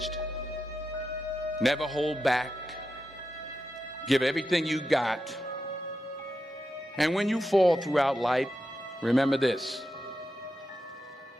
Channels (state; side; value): normal; both; correlation 0.88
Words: Never hold back. Give everything you got. And when you fall throughout life, remember this: